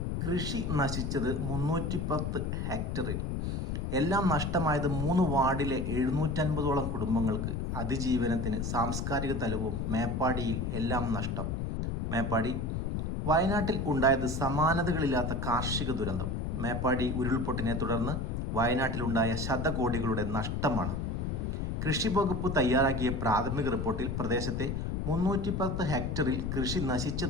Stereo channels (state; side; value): noise; left; rumble, 1 dB below the sound